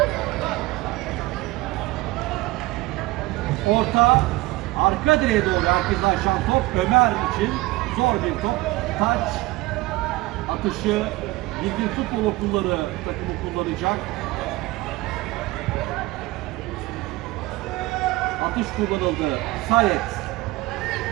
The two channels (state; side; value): quieter; left; 20.3 dB